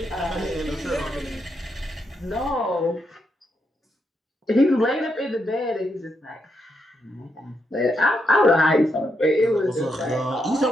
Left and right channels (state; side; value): normal; both; correlation 0.81